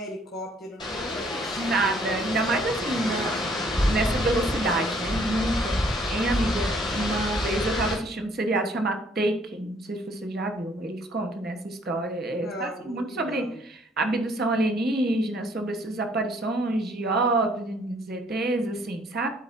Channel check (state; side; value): normal; both; correlation 0.63